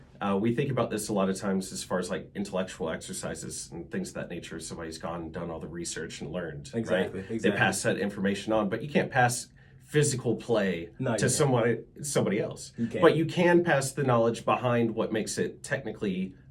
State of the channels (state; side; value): identical; both; correlation 1.00